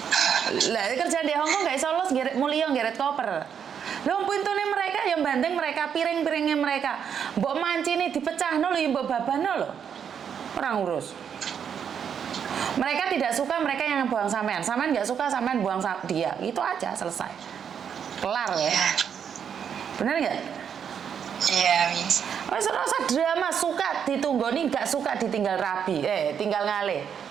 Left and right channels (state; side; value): quieter; left; 7.8 dB